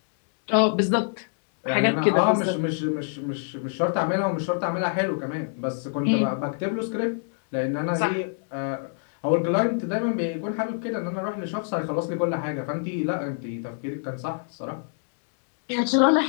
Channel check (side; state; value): right; silent; digital silence